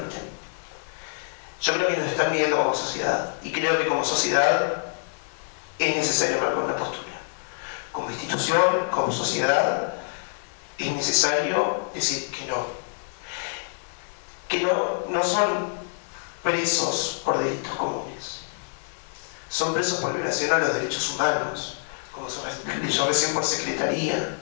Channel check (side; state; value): right; silent; digital silence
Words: Yo creo que nos están midiendo como sociedad. Y creo que como sociedad es necesario marcar una postura. Como institución, como sociedad, es necesario decir que no. Que no son presos por delitos comunes. Son presos por violación a los derechos humanos, como se leyó recién, por secretaría,